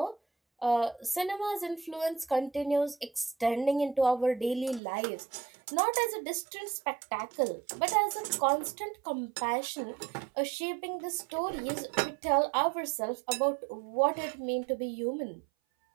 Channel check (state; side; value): drops out; left; at 4.8 s